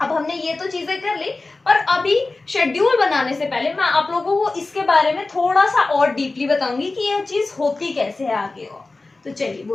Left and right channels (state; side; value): quieter; right; 3.4 dB